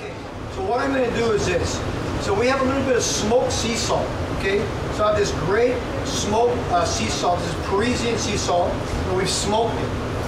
So what I'm going to do is this. So we have a little bit of smoked sea salt, okay? So I have this great smoked sea salt. This is Parisian sea salt, and we've smoked it,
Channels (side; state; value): both; identical; correlation 1.00